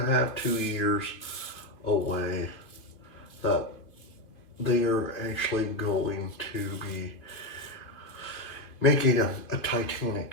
a half, 2 years away, that they are actually going to be making a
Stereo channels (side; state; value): right; late; 2.6 ms